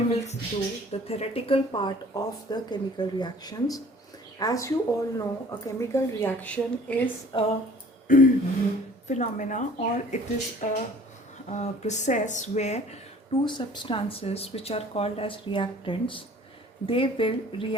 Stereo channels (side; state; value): both; normal; correlation 0.51